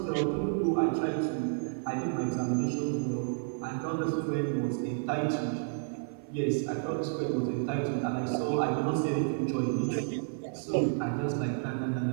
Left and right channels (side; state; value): left; silent; digital silence